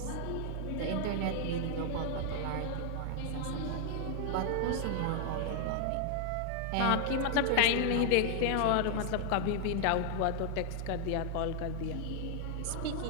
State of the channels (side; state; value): both; different; correlation 0.00